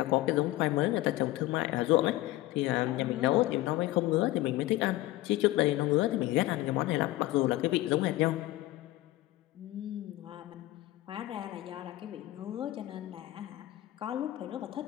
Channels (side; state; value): right; quieter; 17.2 dB